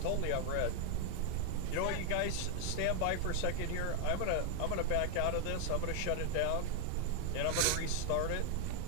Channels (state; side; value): different; both; correlation 0.00